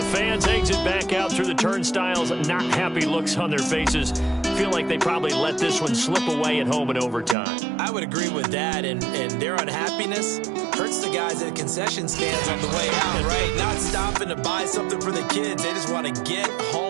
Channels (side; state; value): left; drops out; at 7.4 s